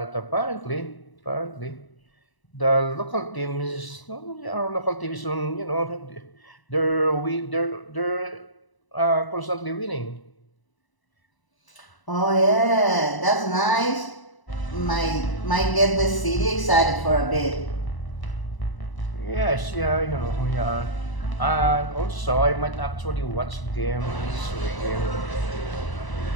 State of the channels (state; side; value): late; right; 1.0 ms